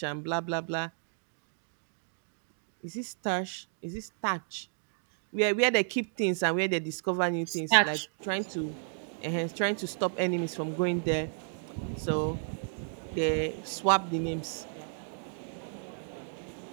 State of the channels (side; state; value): left; silent; digital silence